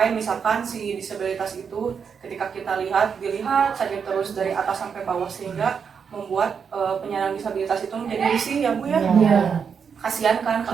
misalkan si disabilitas itu ketika kita dilihat saja terus dari atas sampai bawah, sehingga membuat penyandang disabilitas itu menjadi risih ya Bu ya. Kasihan kan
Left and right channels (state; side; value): quieter; left; 6.5 dB